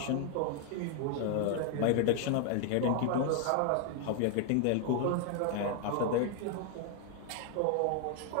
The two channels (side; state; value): both; different; correlation 0.00